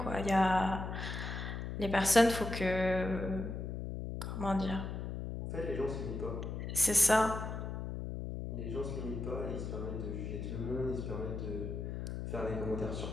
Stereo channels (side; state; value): left; noise; hum, 5 dB below the sound